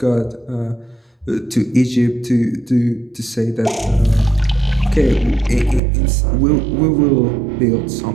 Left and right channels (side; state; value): left; drops out; at 5.8 s